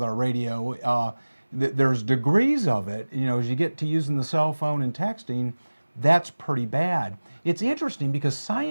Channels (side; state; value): both; inverted; correlation -1.00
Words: our radio. There's degrees of it. You know, as you get to using the cell phone and texting, that's pretty bad. It's interesting because